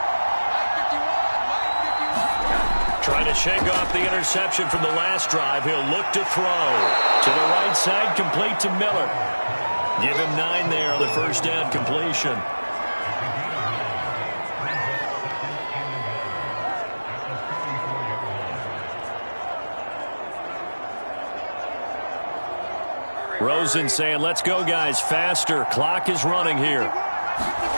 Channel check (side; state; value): both; inverted; correlation -1.00